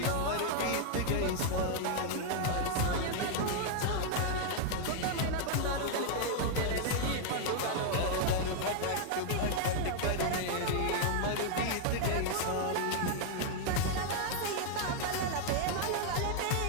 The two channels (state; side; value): different; both; correlation 0.00